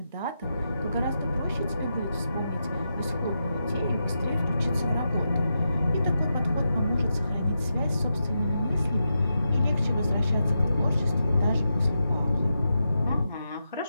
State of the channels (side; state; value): both; inverted; correlation -0.87